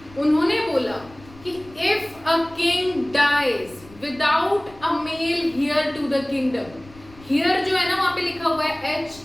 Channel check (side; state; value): left; noise; rumble, 22 dB below the sound